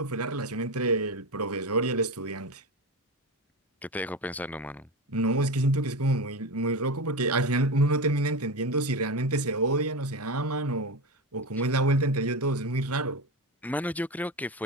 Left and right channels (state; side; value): normal; both; correlation 0.20